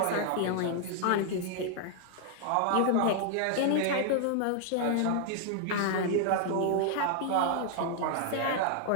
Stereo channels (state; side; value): different; both; correlation 0.00